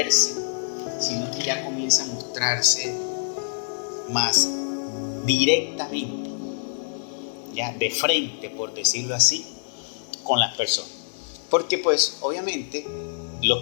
sino que ya comienza a mostrarse más directamente, ya de frente, por decirlo así, con las personas. Porque pues obviamente los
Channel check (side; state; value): right; silent; digital silence